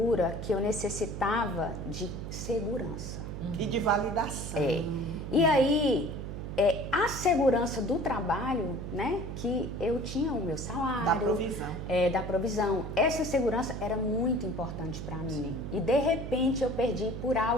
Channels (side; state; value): right; noise; hum, 7 dB below the sound